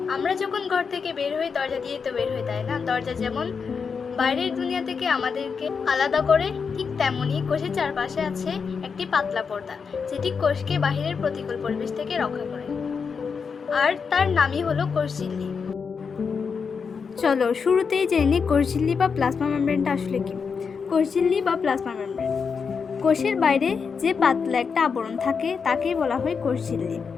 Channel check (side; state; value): right; quieter; 5.7 dB